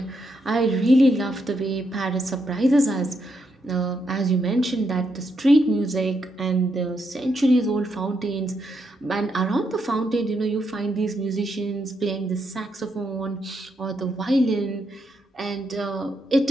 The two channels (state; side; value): normal; both; correlation 0.80